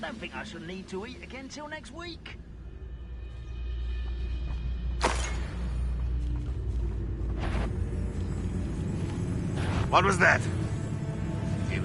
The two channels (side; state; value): both; identical; correlation 1.00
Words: think I shall need to eat again till next week. What was that? He